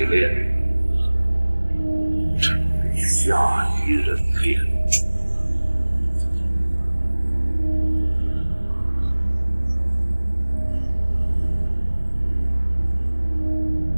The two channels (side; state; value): both; inverted; correlation -1.00